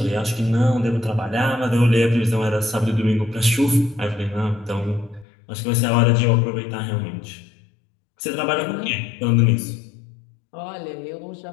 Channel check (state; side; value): drops out; right; at 5.2 s